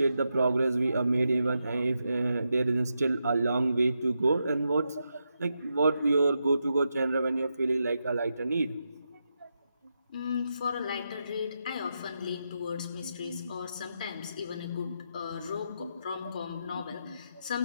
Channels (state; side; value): inverted; both; correlation -0.85